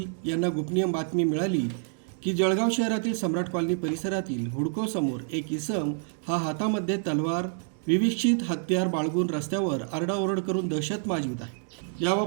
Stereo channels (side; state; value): left; silent; 55 dB below the other